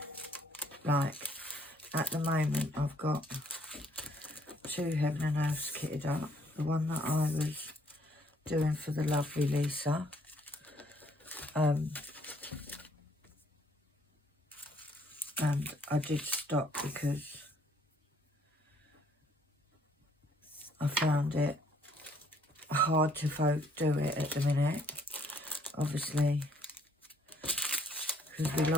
like, at the moment, I've got 2 heaven and earths kitted up. The one that I was doing for the lovely Lisa. And I did stop because I found it hard to do it at the minute. Obviously, because we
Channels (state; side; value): normal; both; correlation 0.65